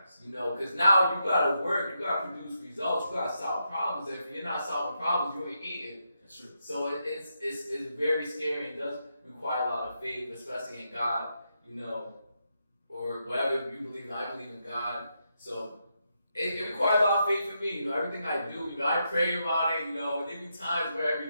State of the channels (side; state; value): both; inverted; correlation -0.83